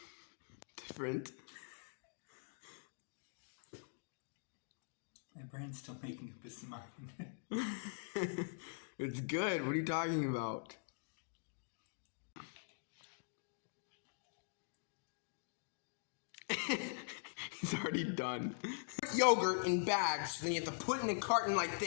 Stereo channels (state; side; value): silent; right; digital silence